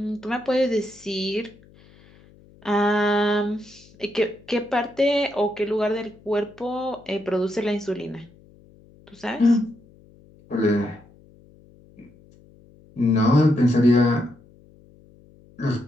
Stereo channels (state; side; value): noise; left; hum, 26 dB below the sound